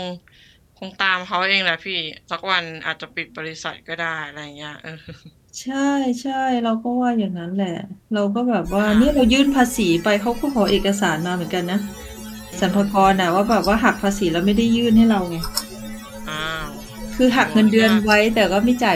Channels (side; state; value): both; identical; correlation 1.00